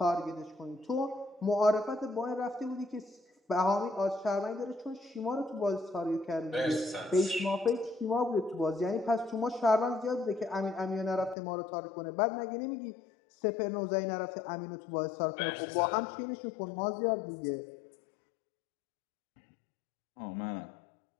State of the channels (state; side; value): drops out; right; at 11.4 s